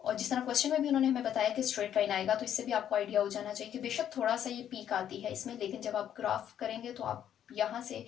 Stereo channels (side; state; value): right; quieter; 10.0 dB